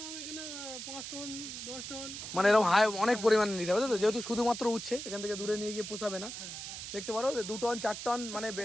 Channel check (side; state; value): right; noise; hiss, 8 dB below the sound